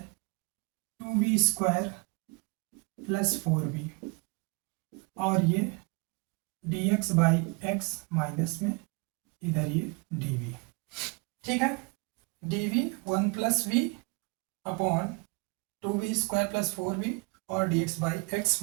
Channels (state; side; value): quieter; left; 29.6 dB